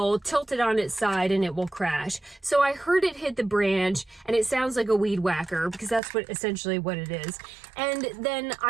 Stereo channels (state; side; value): drops out; left; at 6.0 s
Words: tilt it on its side and it will crash. So I heard it hit the branch, and it sounds like a weed whacker because that's essentially what it is. And then